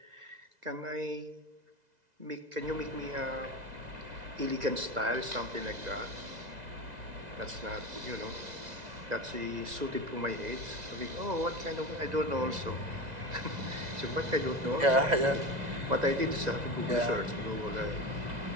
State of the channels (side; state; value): left; late; 2.0 ms